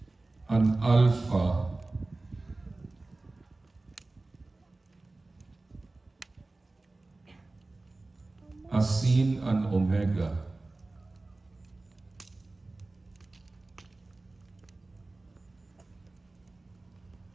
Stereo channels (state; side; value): quieter; left; 3.1 dB